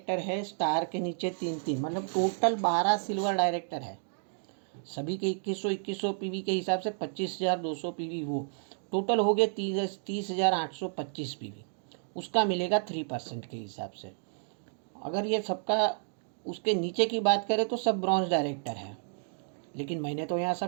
है स्टार के नीचे 3-3, मतलब टोटल 12 सिल्वर डायरेक्टर है, सभी के 2100 पीवी के हिसाब से 25,200 पीवी, वो टोटल हो गए 30,825 पीवी, उसका मिलेगा 3% के हिसाब से। अगर ये सबका उसके नीचे की बात करें तो सब ब्रॉन्ज डायरेक्टर है, लेकिन मैंने तो यहाँ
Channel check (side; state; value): left; silent; digital silence